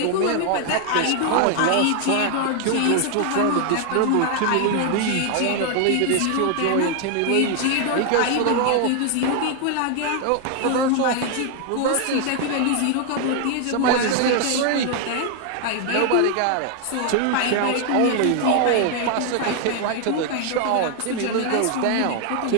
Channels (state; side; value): different; both; correlation 0.00